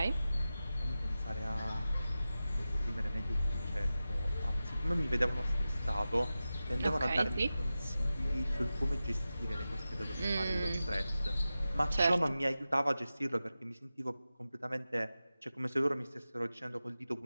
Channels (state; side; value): inverted; both; correlation -0.94